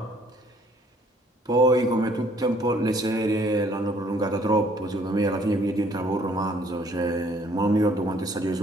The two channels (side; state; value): both; normal; correlation 0.61